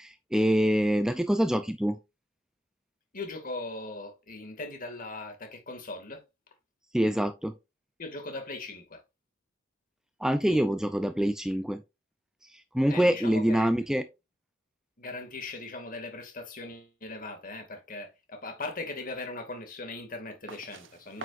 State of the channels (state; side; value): normal; both; correlation 0.89